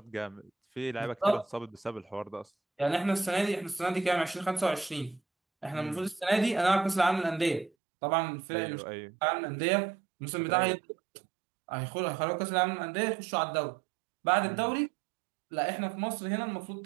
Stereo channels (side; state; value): left; drops out; at 7.7 s